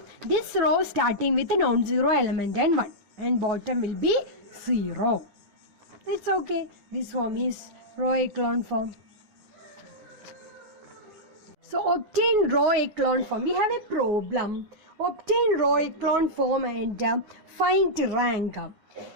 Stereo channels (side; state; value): left; late; 9.9 ms